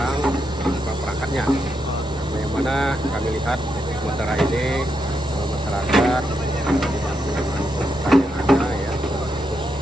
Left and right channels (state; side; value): normal; both; correlation 0.82